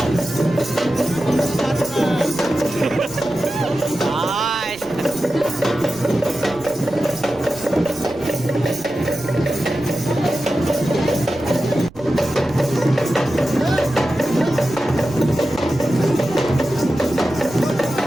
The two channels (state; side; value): noise; right; rumble, 21 dB below the sound